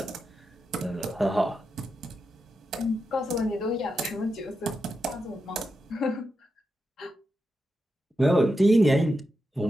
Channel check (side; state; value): both; normal; correlation 0.88